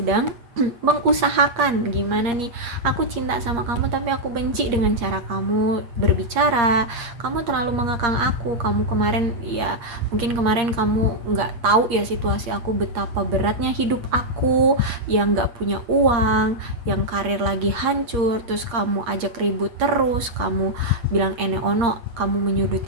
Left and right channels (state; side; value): late; left; 8.6 ms